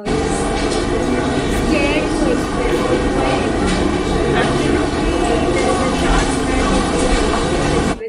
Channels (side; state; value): both; identical; correlation 1.00